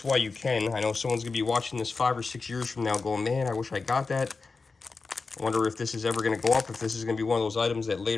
while you can. I know someone's going to be watching this 5 or 6 years from now going, man, I wish I got that. I wonder if this is ever going to go up, if this is going to be one of those items that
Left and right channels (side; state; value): right; quieter; 4.2 dB